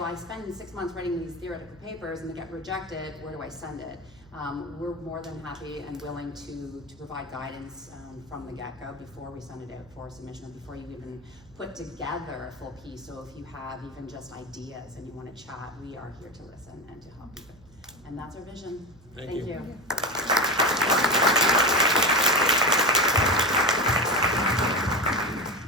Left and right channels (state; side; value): noise; right; hum, 25 dB below the sound